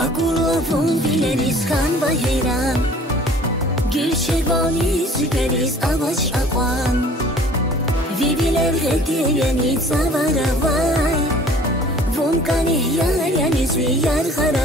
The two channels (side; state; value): both; normal; correlation 0.50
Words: Agulavun bileriz kan ve heyran, gül şervani süperiz avaç akvan. Viviler hediyeni zavara vay, vun kanih yar yani züyar